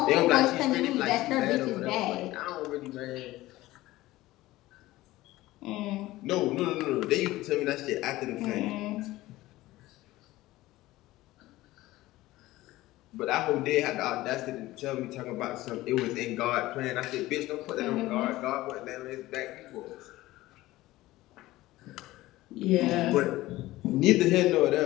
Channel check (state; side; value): quieter; right; 17.4 dB